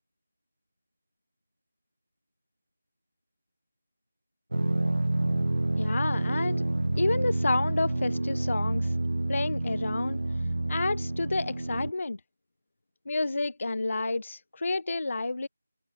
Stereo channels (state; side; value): inverted; both; correlation -0.95